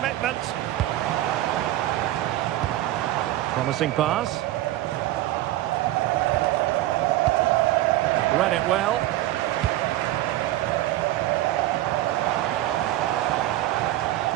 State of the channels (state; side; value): quieter; left; 15.3 dB